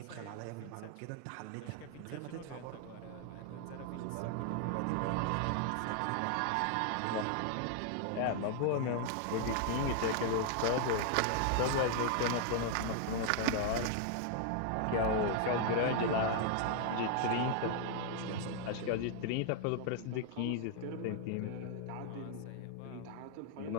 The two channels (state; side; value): different; both; correlation 0.00